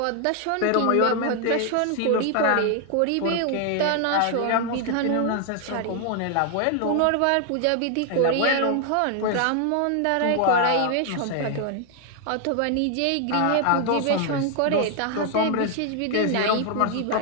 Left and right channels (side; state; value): both; different; correlation 0.00